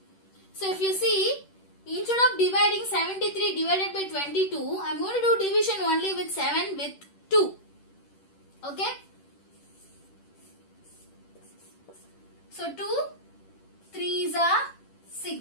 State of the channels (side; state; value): right; late; 10 ms